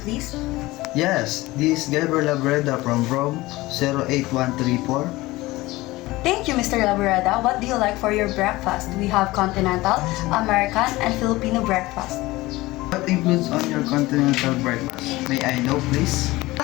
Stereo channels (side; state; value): right; quieter; 19.5 dB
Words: please? Yes, this is Gabriel Labreda from Rome 08134. Thank you, Mr. Laborada. What do you like for your breakfast? We have continental, American, and Filipino breakfast. What includes on your continental breakfast? May I know, please?